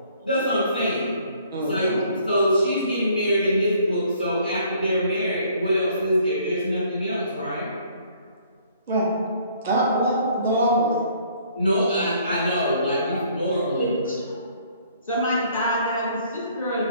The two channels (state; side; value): inverted; both; correlation -0.60